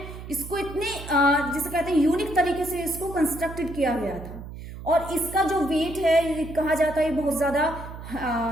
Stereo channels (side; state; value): right; noise; hum, 12 dB below the sound